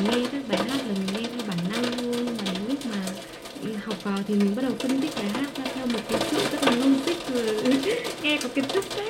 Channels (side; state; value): both; identical; correlation 1.00